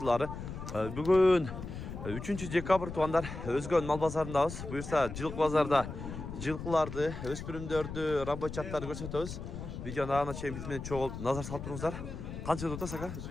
Bugün 3 dekabr tuanlar Özgön mal bazarındayız. Buyursa Jılk bazarda jılkılardı, öspürümdörдү, рабочаттарды көрсөтөбүз. Видеону ана чейин биз менен чогулуп назар салып туруңуздар. Канча деп атасыз ака?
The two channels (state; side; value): noise; left; rumble, 8 dB below the sound